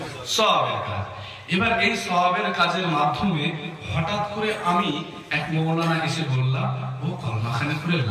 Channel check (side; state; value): both; identical; correlation 1.00